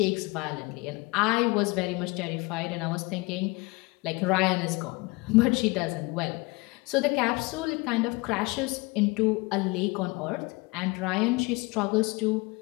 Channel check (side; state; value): right; quieter; 25.7 dB